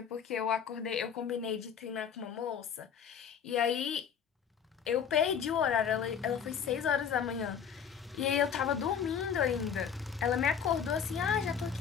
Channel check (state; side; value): quieter; right; 7.6 dB